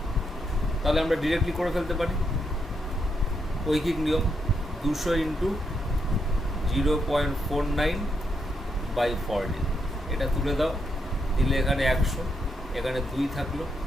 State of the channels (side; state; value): both; normal; correlation 0.80